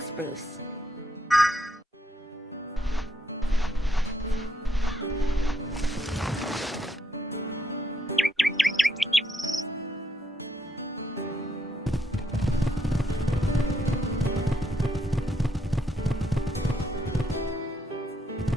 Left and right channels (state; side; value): normal; both; correlation 0.76